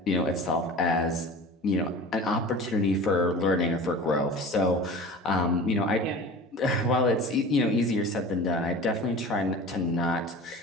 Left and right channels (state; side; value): normal; both; correlation 0.37